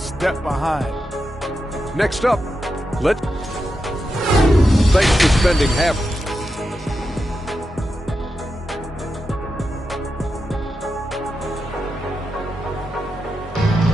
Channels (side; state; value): both; normal; correlation 0.88